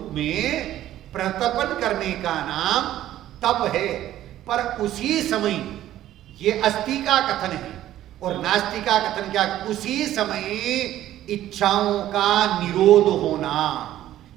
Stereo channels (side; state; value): left; quieter; 13.1 dB